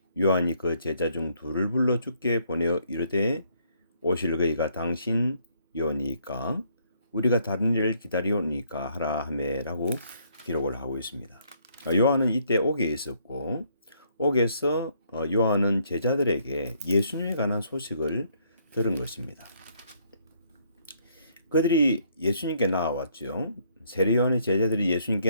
요한이 그 제자 중 둘을 불러 주께 보내어 이르되 오실 그이가 당신이오니까 우리가 다른 일을 기다리오니까 하라 하매라고 기록을 하고 있습니다. 요한은 이때 옥에 있었고 옥에서 요한은 제자들에게 예수님에 관한 소식을 들은 것입니다. 그들이 예수님께 나와왔죠. 세례 요한의 제자들이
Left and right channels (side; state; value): both; inverted; correlation -0.68